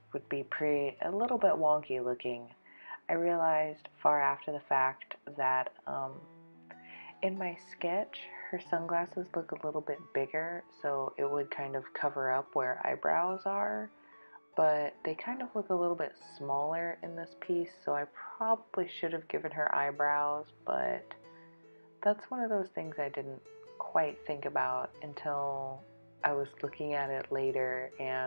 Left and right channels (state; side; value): inverted; both; correlation -1.00